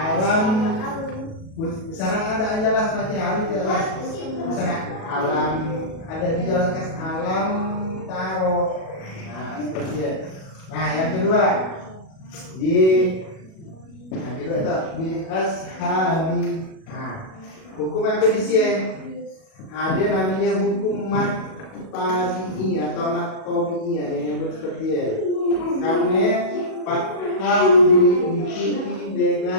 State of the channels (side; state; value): right; late; 37 ms